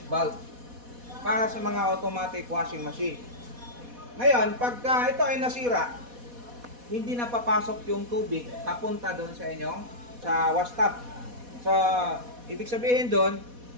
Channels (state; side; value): late; left; 4.1 ms